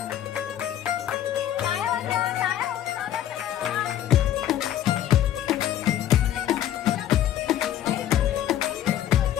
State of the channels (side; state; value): right; quieter; 11.5 dB